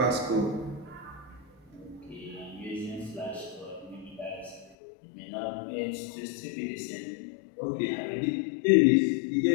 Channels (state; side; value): drops out; right; at 4.8 s